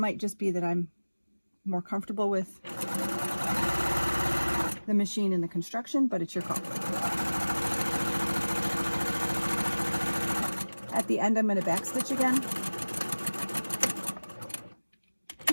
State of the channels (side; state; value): both; inverted; correlation -1.00